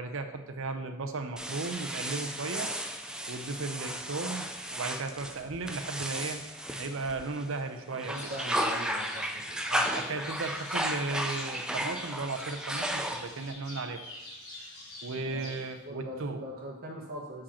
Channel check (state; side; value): normal; both; correlation 0.36